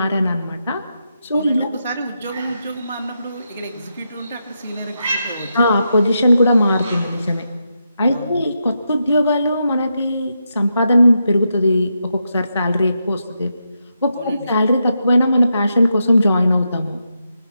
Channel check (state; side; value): inverted; both; correlation -0.84